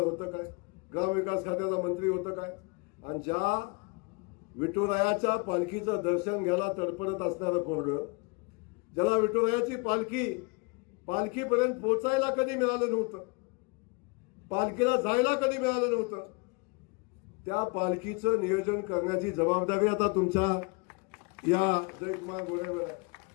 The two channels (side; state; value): right; quieter; 29.9 dB